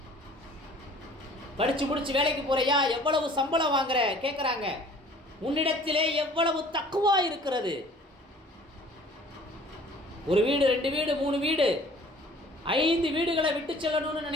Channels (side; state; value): both; normal; correlation 0.51